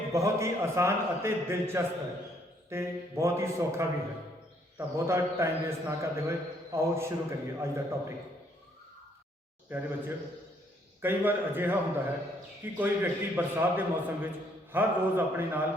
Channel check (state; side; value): normal; both; correlation 0.67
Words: ਬਹੁਤ ਹੀ ਆਸਾਨ ਅਤੇ ਦਿਲਚਸਪ ਹੈ ਤੇ ਬਹੁਤ ਹੀ ਸੌਖਾ ਵੀ ਹੈ। ਤਾਂ ਬਹੁਤਾ ਟਾਈਮ ਵੇਸਟ ਨਾ ਕਰਦੇ ਹੋਏ ਆਓ ਸ਼ੁਰੂ ਕਰੀਏ ਅੱਜ ਦਾ ਟੌਪਿਕ। ਪਿਆਰੇ ਬੱਚਿਓ, ਕਈ ਵਾਰ ਅਜਿਹਾ ਹੁੰਦਾ ਹੈ ਕਿ ਕੋਈ ਵਿਅਕਤੀ ਬਰਸਾਤ ਦੇ ਮੌਸਮ ਵਿੱਚ ਹਰ ਰੋਜ਼ ਆਪਣੇ ਨਾਲ